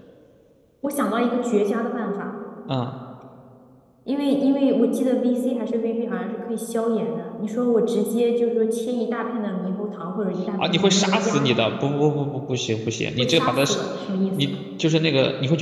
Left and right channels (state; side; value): identical; both; correlation 1.00